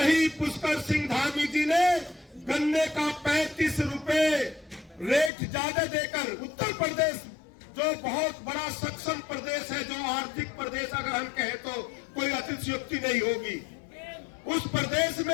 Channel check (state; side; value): drops out; right; at 5.3 s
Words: पुष्कर सिंह धामी जी ने गन्ने का 35 रुपए रेट ज्यादा देकर उत्तर प्रदेश, जो बहुत बड़ा सक्षम प्रदेश है, जो आर्थिक प्रदेश अगर हम कहें तो कोई अतिशयोक्ति नहीं होगी, उस प्रदेश